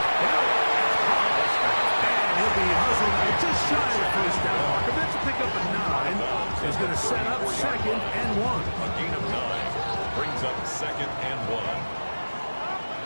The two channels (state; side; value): inverted; both; correlation -1.00